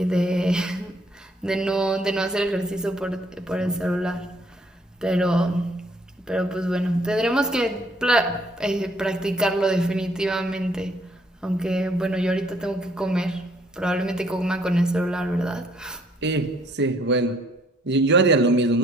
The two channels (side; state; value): both; normal; correlation 0.65